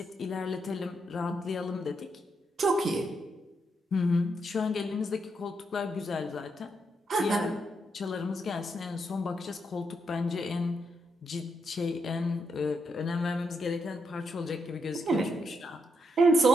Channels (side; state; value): both; normal; correlation 0.80